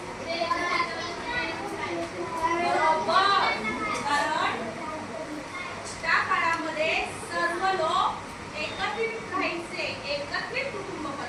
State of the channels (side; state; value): both; identical; correlation 1.00